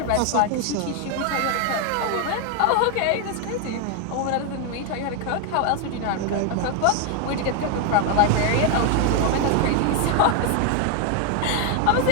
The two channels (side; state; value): both; different; correlation 0.01